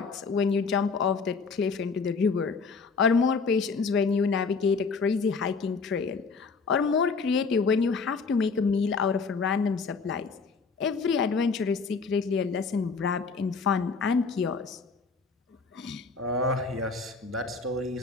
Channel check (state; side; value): quieter; right; 4.7 dB